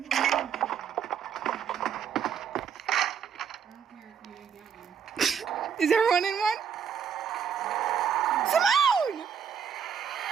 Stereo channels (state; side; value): quieter; left; 7.5 dB